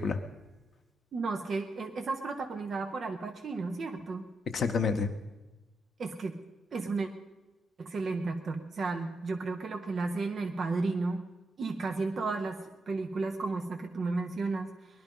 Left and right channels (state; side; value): normal; both; correlation 0.84